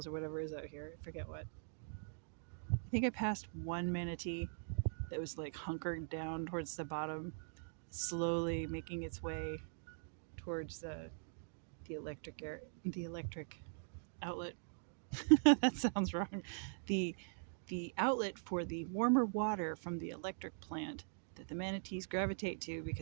or whatever is out here. I forget what. I think I passed one manatee that was like hunkered down towards the bottom, slowly making its way towards the electric outlet. That sounds wrong. The outlet for the warmer water from the electric plant that the manatees gravitate to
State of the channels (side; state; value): left; silent; digital silence